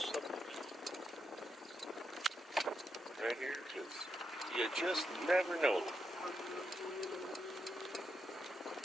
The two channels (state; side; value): normal; both; correlation 0.83